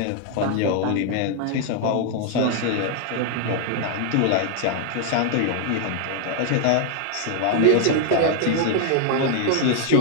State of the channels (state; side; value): different; both; correlation 0.00